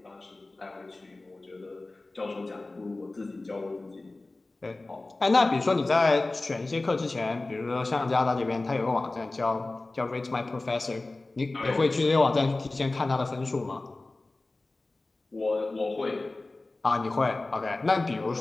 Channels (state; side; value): quieter; right; 3.1 dB